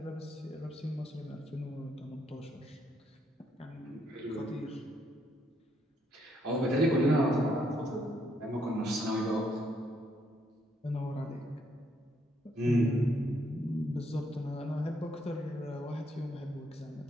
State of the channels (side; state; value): both; normal; correlation 0.73